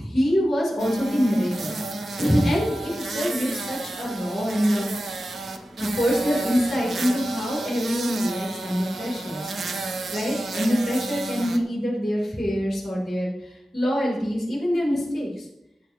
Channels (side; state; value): both; normal; correlation 0.93